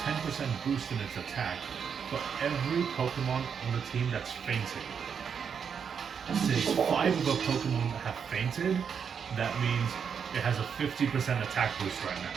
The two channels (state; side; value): quieter; left; 6.9 dB